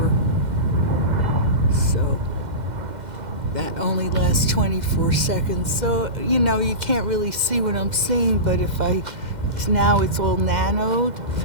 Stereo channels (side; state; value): left; late; 2.1 ms